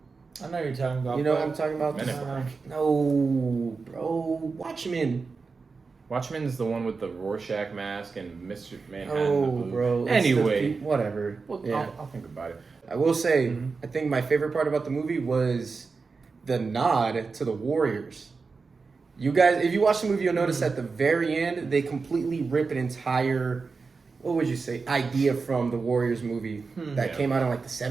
I know you're talking about. You know what I'm talking about? No, bro. Watchmen. Watchmen's the one with the Rorschach mask and Mr. Manhattan. Oh, bro. Anyway. Whatever. Well, I'll think about it. I will say, I think my favorite part about the movie was the nod to the Warriors. You guys, if you watch the movie, you'll notice at the very end, they completely rip an entire, what would you say, idea from the Warriors movie that came out in like the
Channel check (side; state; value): left; quieter; 4.6 dB